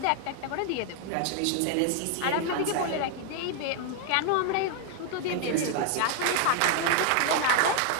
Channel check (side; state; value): both; different; correlation 0.01